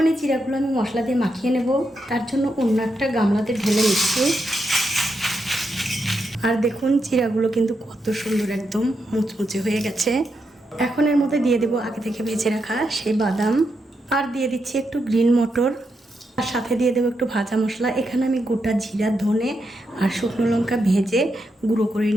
এই চিড়াগুলো আমি মশলা দিয়ে মাখিয়ে নেব, তার জন্য অন্য একটা গামলাতে ঢেলে নিচ্ছি। আর দেখুন, চিড়াগুলো কিন্তু কত সুন্দর একদম মুচমুচে হয়ে গেছে। এখন এর মধ্যে দিয়ে দেবো আগে থেকে ভেজে রাখা সেই বাদাম, আর দিয়ে দিচ্ছি একটু গ্রিন মটর, আর সাথে দিয়ে দেবো একটু ভাজা মশলা। এখানে আমি গোটা জিরা, ধনে আর শুকনো লঙ্কা ভেজে গুঁড়ো করে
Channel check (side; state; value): both; normal; correlation 0.84